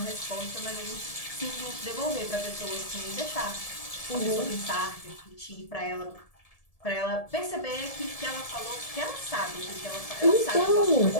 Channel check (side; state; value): right; late; 1.7 ms